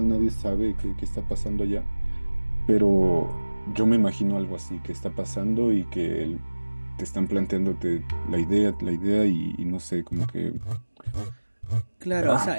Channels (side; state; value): both; inverted; correlation -1.00